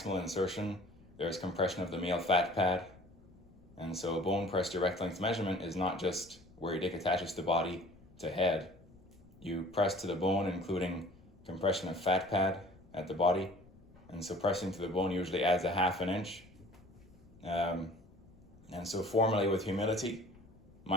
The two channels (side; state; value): left; noise; rumble, 25 dB below the sound